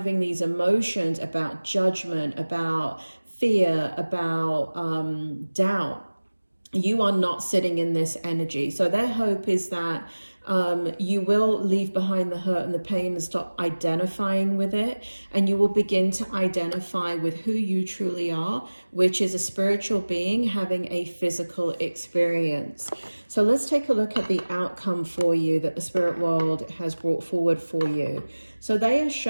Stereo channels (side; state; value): both; inverted; correlation -1.00